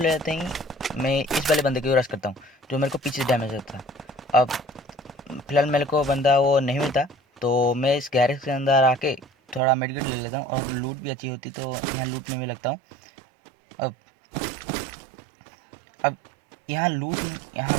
लेते ही मैं इस वाले बंदे की रश करता हूँ जो मेरे को पीछे से डैमेज देता था। अब फिलहाल मेरे को बंदा वो नहीं मिलता, तो मैं इस गैरेज के अंदर आके थोड़ा मेडिकेट ले लेता हूँ, और लूट भी अच्छी होती तो यहाँ लूटने में लगता हूँ। अब अब यहाँ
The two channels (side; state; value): left; drops out; at 9.6 s